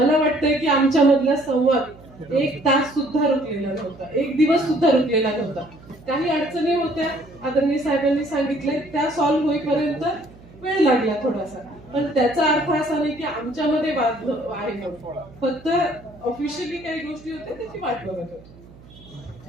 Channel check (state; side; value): noise; right; hum, 22 dB below the sound